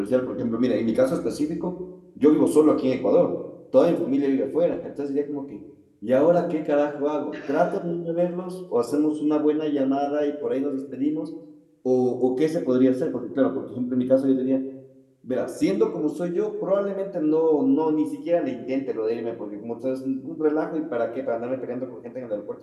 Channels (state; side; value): identical; both; correlation 1.00